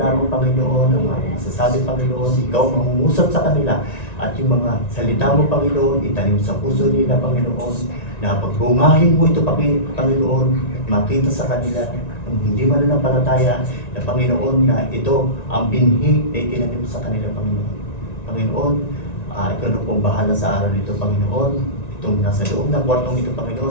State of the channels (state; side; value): late; right; 1.9 ms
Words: Panginoon, ang mga masasabi, Panginoon, ikaw mangungusap sa kanila. At yung mga salita mo, Panginoon, itanim sa puso nila, Panginoon, na pagbungahin mo ito, Panginoon, at makita sa kanila ang hindi mananampalataya na Panginoon na ito ang binhi na itinanim sa kanila, Panginoon. Panginoon, ikaw na pong bahala sa araw nito, Panginoon. Itong nasa loob ng kwartong ito,